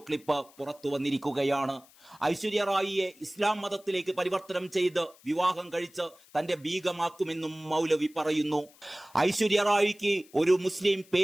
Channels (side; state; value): left; noise; hiss, 26 dB below the sound